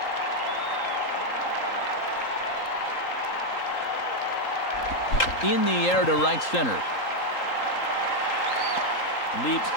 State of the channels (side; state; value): right; late; 3.8 ms